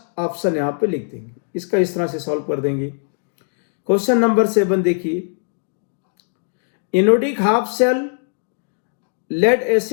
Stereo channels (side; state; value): right; silent; digital silence